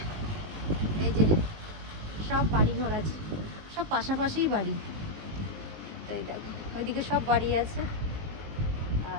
এই যে সব বাড়ি ঘর আছে, সব পাশাপাশিই বাড়ি। তো এই দেখো ওইদিকে সব বাড়ি আছে,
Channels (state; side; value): late; left; 19 ms